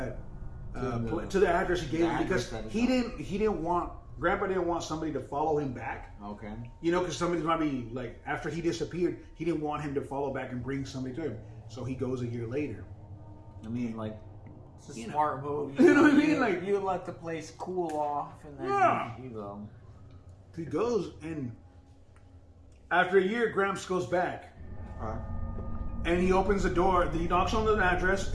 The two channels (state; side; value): identical; both; correlation 1.00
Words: to the address he gave him because Grandpa didn't want somebody to follow him back. Okay. You know, because somebody might be like, after he disappeared, he didn't want him to follow back and bring somebody to him. So he goes a year later. I mean, like, it's a smart move. You know what I mean? Like, you let the place cool off, and then you go. He goes, and after a year, Gramps goes back. And he opens the door. He knocks on the address,